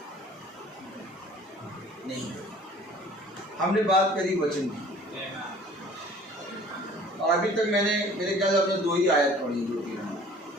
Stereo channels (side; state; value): both; normal; correlation 0.50